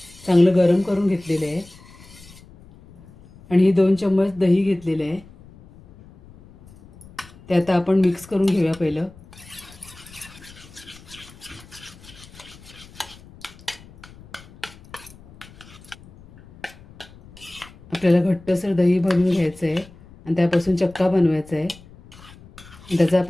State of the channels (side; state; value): left; noise; rumble, 22 dB below the sound